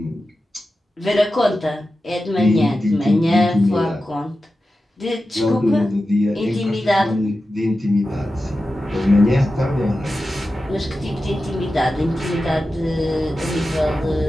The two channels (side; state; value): both; normal; correlation 0.92